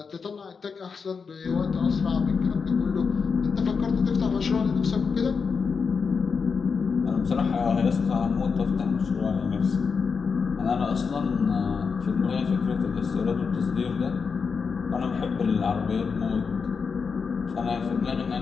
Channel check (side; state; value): right; quieter; 5.5 dB